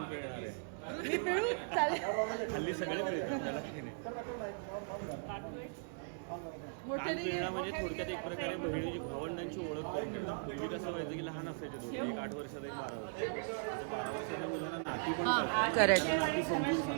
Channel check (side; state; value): left; silent; digital silence